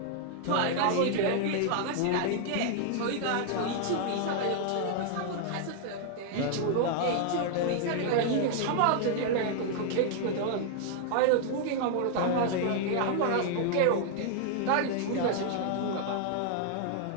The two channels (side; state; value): both; different; correlation 0.00